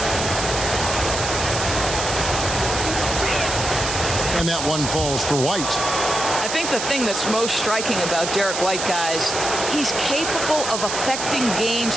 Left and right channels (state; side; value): noise; right; hiss, 4 dB below the sound